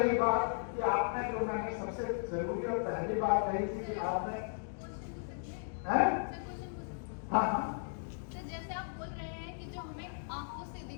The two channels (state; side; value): silent; right; digital silence